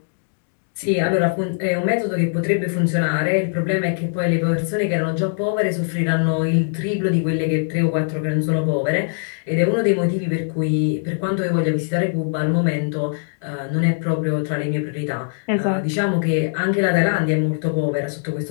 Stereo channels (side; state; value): right; silent; digital silence